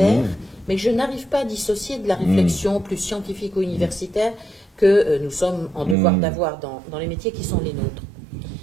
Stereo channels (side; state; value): left; drops out; at 6.0 s